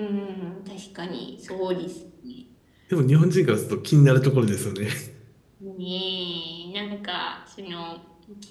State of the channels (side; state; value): both; identical; correlation 1.00